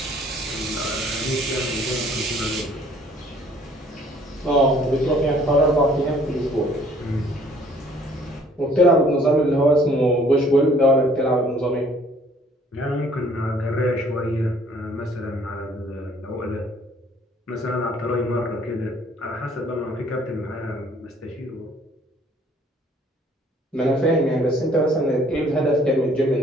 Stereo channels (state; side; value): normal; both; correlation 0.58